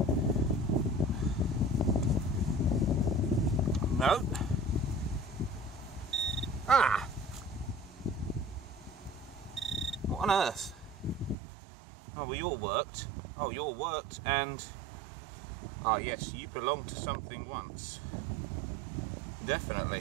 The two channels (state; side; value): drops out; left; at 11.4 s